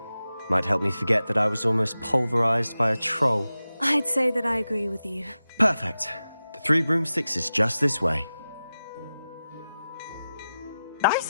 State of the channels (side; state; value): both; inverted; correlation -0.93